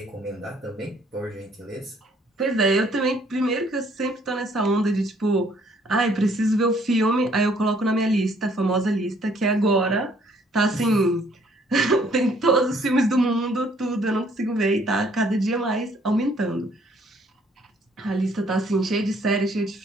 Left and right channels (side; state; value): both; normal; correlation 0.63